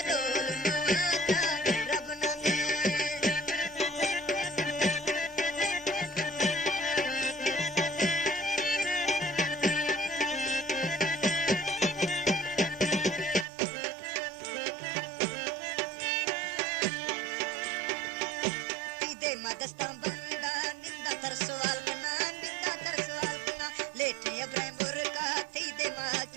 रोल नवात्रा रब नामे मदस्ता बंदा निंदा तरसवाल कना लेटे अब्राहिम बुरका थी दे मा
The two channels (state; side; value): drops out; left; at 13.5 s